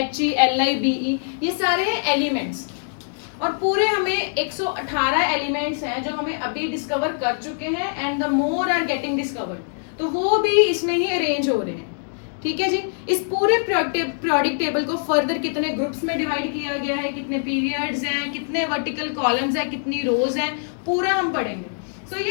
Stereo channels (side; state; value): right; silent; digital silence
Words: He, Li, Be, ये सारे हैं एलिमेंट्स। और पूरे हमें 118 एलिमेंट्स हैं जो हमें अभी डिस्कवर कर चुके हैं and the more are getting discovered, तो वो भी इसमें ही अरेंज हो रहे हैं। ठीक है जी। इस पूरे पीरियोडिक टेबल को फर्दर कितने ग्रुप्स में डिवाइड किया गया है, कितने पीरियड्स हैं, कितने वर्टिकल कॉलम्स हैं, कितनी रोज हैं, पूरा हम पढ़ेंगे। सो